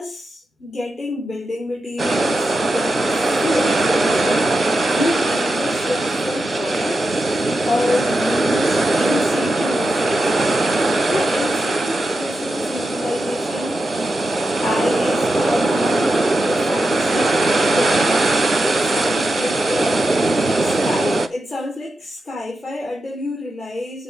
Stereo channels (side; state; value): both; normal; correlation 0.89